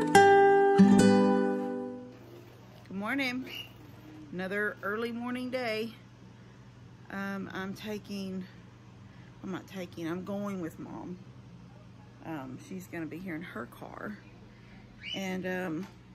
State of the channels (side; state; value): both; identical; correlation 1.00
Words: Good morning. Another early morning day. I'm going with Mom. She's gonna be here in her car, and